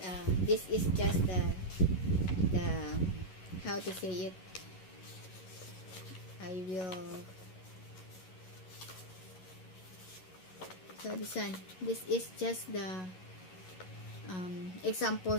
just the how to say it, I will, so this is just the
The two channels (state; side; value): late; right; 11 ms